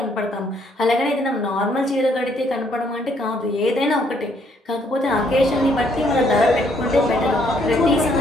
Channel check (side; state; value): both; normal; correlation 0.68